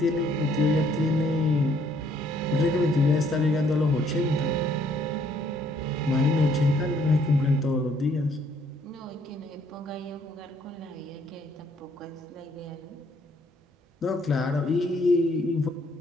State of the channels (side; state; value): both; normal; correlation 0.66